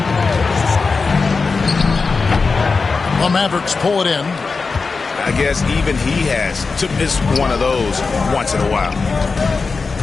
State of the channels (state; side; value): quieter; right; 4.4 dB